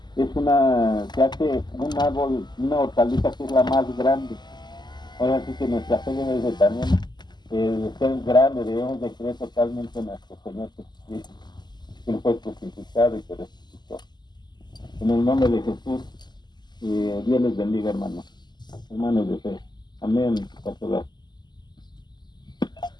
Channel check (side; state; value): right; late; 0.21 ms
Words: se hace un árbol, una hortaliza que es la más grande. Ahora sí que nuestra fe debe de también de ser grande, debemos de creer totalmente en nuestro Señor Jesucristo, que Él fue crucificado y que resucitó. En el nombre de Jesús, Dios les bendiga, hermanos de fe. Amén. Pastor.